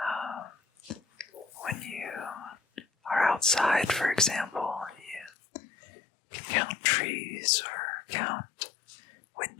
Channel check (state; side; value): drops out; right; at 5.3 s